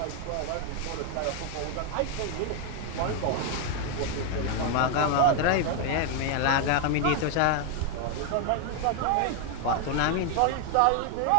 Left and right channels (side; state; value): both; different; correlation 0.01